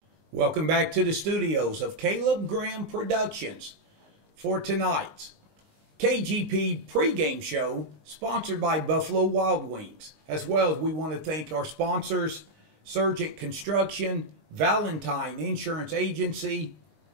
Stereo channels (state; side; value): late; left; 19 ms